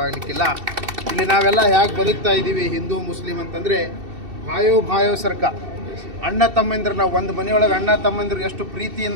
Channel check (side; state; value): left; late; 2.7 ms